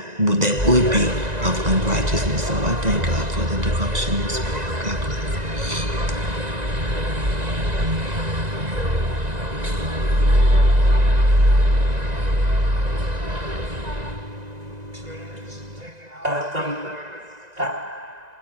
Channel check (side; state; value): left; late; 1.9 ms